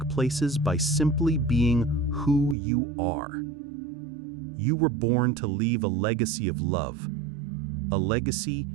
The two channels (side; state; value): left; drops out; at 2.6 s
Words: places by simply being who you are. You were born to leave a legacy of love, a legacy